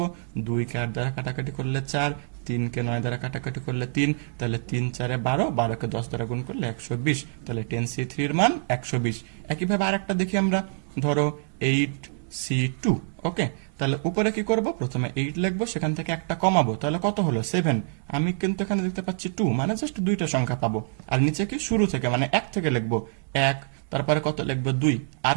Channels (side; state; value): left; silent; digital silence